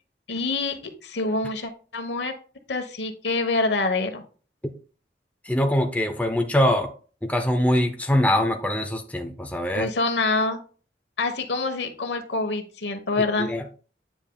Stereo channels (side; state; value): both; normal; correlation 0.41